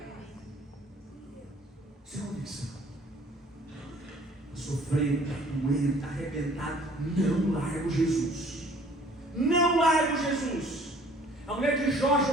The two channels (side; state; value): both; normal; correlation 0.55